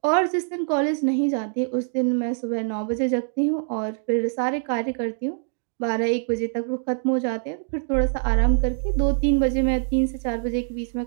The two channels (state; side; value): silent; left; digital silence